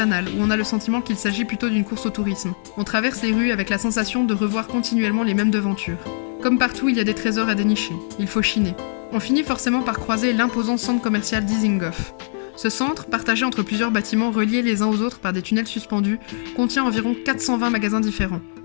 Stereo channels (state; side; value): silent; right; digital silence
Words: où on a le sentiment qu'il s'agit plutôt d'une course au tourisme. On traverse les rues avec la sensation de revoir continuellement les mêmes devantures. Comme partout, il y a des trésors à dénicher. Il faut chiner. On finit forcément par croiser l'imposant centre commercial Dizengoff. Ce centre, partagé entre plusieurs bâtiments reliés les uns aux autres par des tunnels suspendus, contient environ 420 magasins différents.